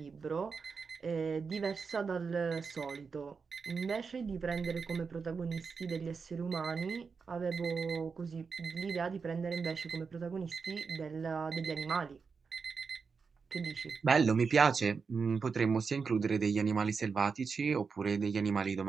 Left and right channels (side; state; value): left; quieter; 5.3 dB